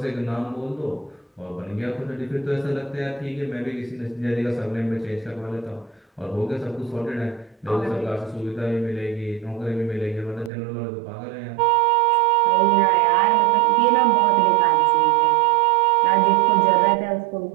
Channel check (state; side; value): drops out; left; at 10.5 s